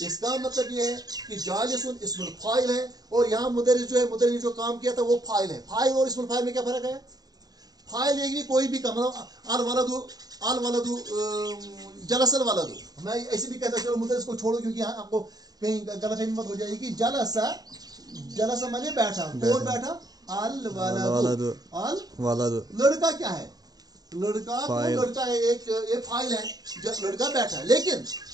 इसका मतलब ये है कि जालिसुन इस्मुल फाइल है, और यहाँ मुदर्रिस जो है, मुदर्रिस जो काम किया था वो फाइल है। फाइल और इस्मुल फाइल में क्या फर्क है, फाइल एक भी कोई भी काम, अल वलदु जलसल वलदु, मैं ऐसे भी कहता चलो मुदर्रिस को छोड़ो क्योंकि यहाँ आपको कहीं गलतफहमी मत हो जाएगी। जलसा, जलसा माने बैठा, कौन बैठा, अल वलदु, अल वलदु, लड़का क्या है, लड़का तो लड़का है, एक फाइल है, लड़का बैठा है। लेकिन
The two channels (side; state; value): left; late; 0.18 ms